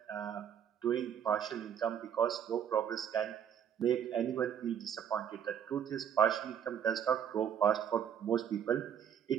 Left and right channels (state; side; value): quieter; left; 8.7 dB